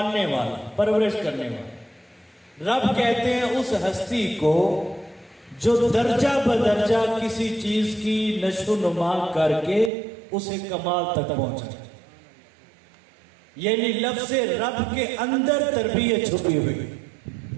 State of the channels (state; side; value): drops out; left; at 9.9 s